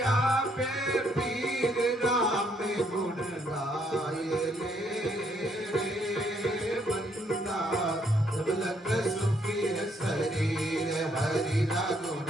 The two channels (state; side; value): normal; both; correlation 0.71